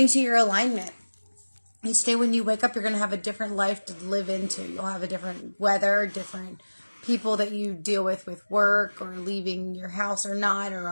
to your alignment. Each day when you wake up, you're going to have a different life to live into. You'll have a different weather, different people that you deal with work, or leaving your house or not, or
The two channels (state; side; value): inverted; both; correlation -1.00